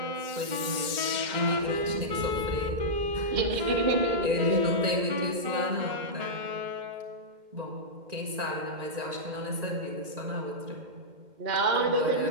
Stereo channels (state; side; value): late; left; 2.1 ms